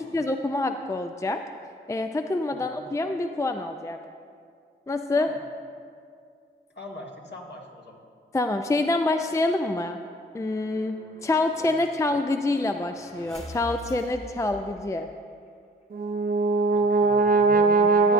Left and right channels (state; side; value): normal; both; correlation 0.53